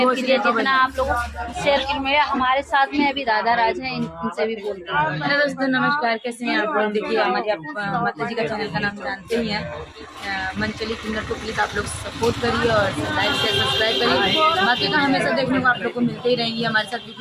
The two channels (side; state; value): both; identical; correlation 1.00